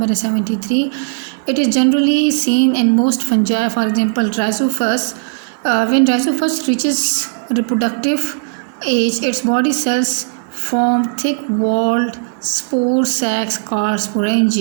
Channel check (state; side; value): silent; left; digital silence